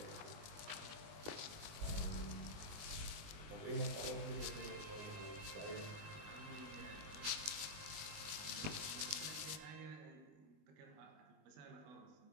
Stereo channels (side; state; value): left; late; 20 ms